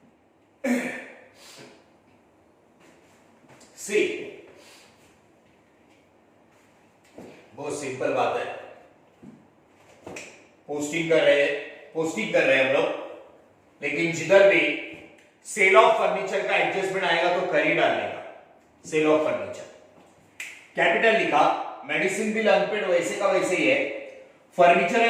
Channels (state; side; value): identical; both; correlation 1.00